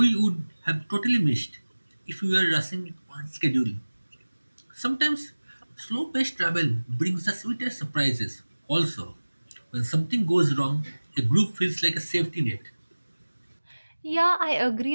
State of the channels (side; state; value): both; inverted; correlation -1.00